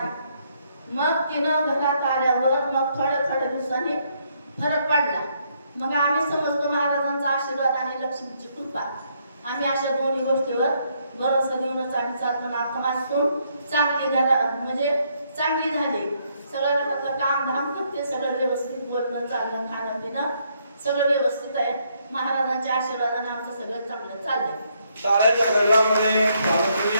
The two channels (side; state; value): both; inverted; correlation -0.72